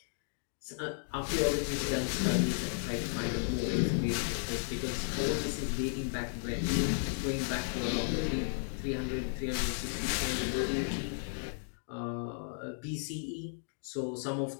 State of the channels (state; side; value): silent; right; digital silence